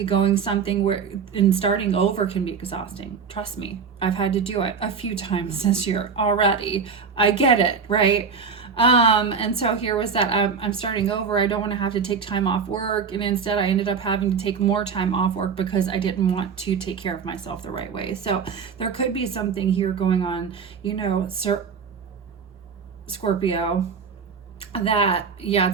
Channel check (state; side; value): quieter; left; 5.9 dB